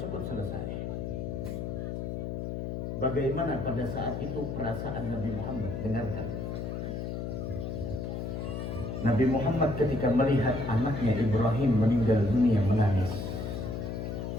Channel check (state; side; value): noise; left; hum, 4 dB below the sound